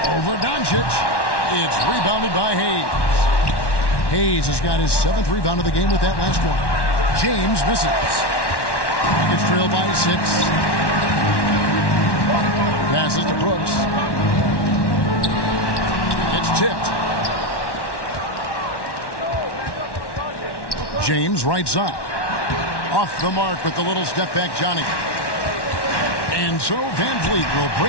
Over Doncic. It's rebounded by Hayes. Hayes has got his 7th rebound of the game with that last one. James misses. Rockets trail by 6. Passes to Brooks. It's tipped. James right side. Off the mark with the little step back Johnny. And so Van Vliet will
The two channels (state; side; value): late; right; 1.1 ms